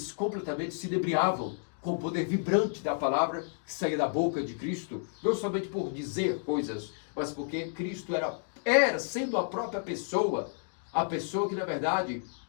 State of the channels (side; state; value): right; silent; digital silence